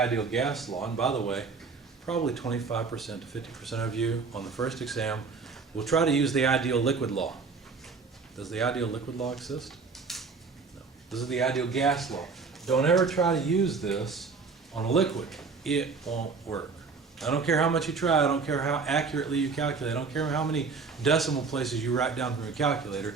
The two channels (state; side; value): quieter; left; 4.8 dB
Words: gas law, and by the way, probably 25% to 50% of you on the first exam will try to use the ideal liquid law. Does the ideal liquid law exist? No. This is the ideal gas law. Don't ever try to use this on a liquid. It won't work. I don't care how much you try, I don't care how accurately you calculate, I don't care how many decimal places you write down from your calculator,